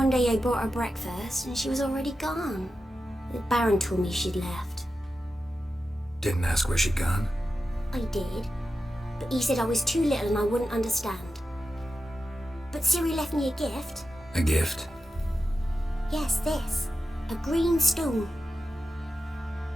day I bought her breakfast and she was already gone. The Baron told me she'd left. Didn't ask where she'd gone? I did. But he said I was too little and I wouldn't understand. But Ciri left me a gift. A gift? Yes, this. A green stone.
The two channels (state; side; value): normal; both; correlation 0.91